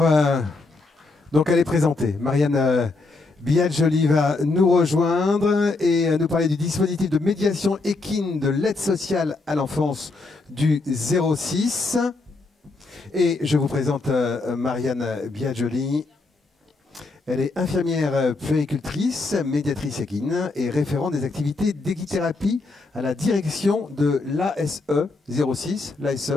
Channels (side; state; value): right; quieter; 3.5 dB